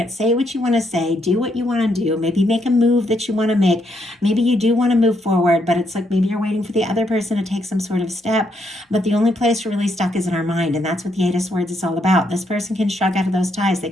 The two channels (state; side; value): normal; both; correlation 0.76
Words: say what you want to say, do what you want to do, maybe make a move that you want to make. Maybe you do want to move forward, but it's like maybe you're waiting for the other person to take some sort of step. But the only place we're really stuck is in our mind. And that's what the 8 of Swords is all about. This person can shrug out of those ties. They